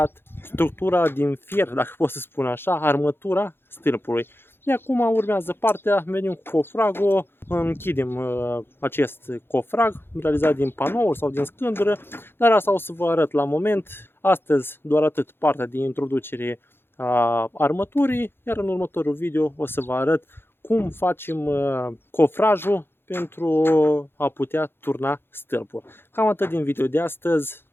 structura din fier, dacă pot să spun așa, armătura stâlpului. De acum urmează partea, venim cu cofragul, închidem acest cofrag realizat din panouri sau din scândură, dar asta o să vă arăt la moment. Astăzi doar atât partea de introducere a armăturii, iar în următorul video o să vă arăt cum facem cofrajul pentru a putea turna stâlpul. Cam atât din video de astăzi.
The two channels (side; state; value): right; late; 0.11 ms